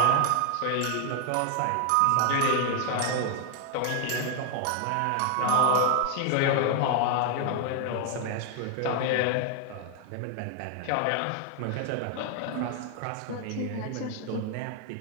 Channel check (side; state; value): both; different; correlation 0.00